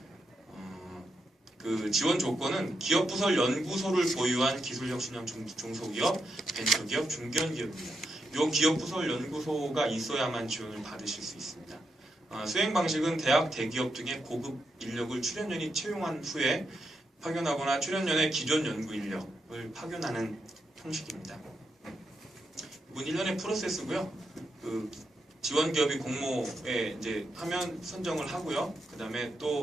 그 지원 조건은 기업 부설 연구소를 보유한 기술혁신형 중소기업, 벤처기업, 중견기업입니다. 이 기업 부설 연구소가 있어야만 지원을 받으실 수 있습니다. 수행 방식은 대학, 대기업 등의 고급 인력을 출연연이 채용한 후에 파견하거나 출연연의 기존 연구 인력을 파견하는 형식입니다. 이건 1년의 프로세스고요. 그 지원 기업이 공모에 이제 하면 선정을 하고요. 그 다음에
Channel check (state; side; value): normal; both; correlation 0.83